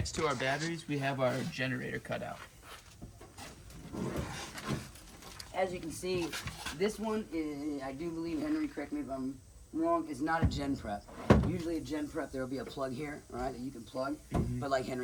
to our batteries, we have our generator cutout. As you can see, this one is, I do believe, Henry, correct me if I'm wrong, is not a gen prep. Usually a gen prep, there will be a plug here, right, that you can plug. Mm-hmm. But like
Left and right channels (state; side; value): identical; both; correlation 1.00